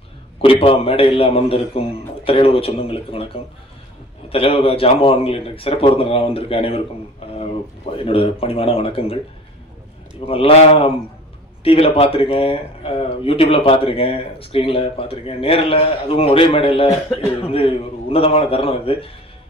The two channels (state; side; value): normal; both; correlation 0.44